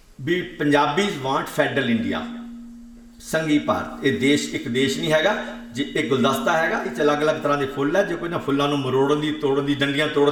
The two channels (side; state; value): both; identical; correlation 1.00